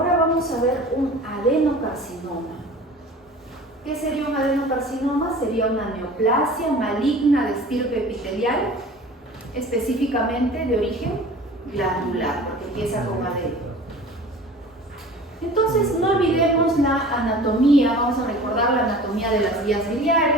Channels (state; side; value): normal; both; correlation 0.41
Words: vamos a ver un adenocarcinoma. ¿Qué sería un adenocarcinoma? Sería una neoplasia maligna de estirpe epitelial, específicamente de origen glandular, porque empieza con adeno. Entonces, no olvidemos la anatomía, vamos a recordar la anatomía de las vías